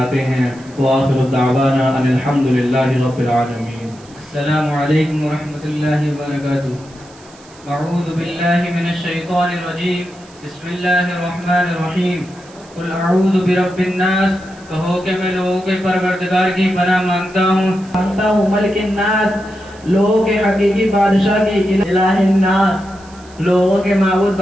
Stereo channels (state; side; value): noise; right; hiss, 25 dB below the sound